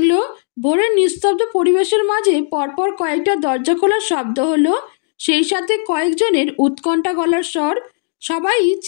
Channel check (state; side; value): silent; right; digital silence